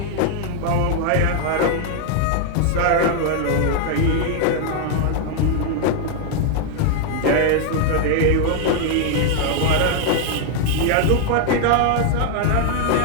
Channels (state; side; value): different; both; correlation 0.00